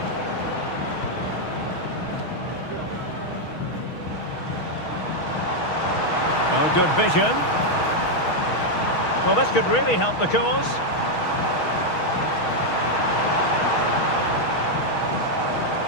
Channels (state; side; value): late; right; 6.3 ms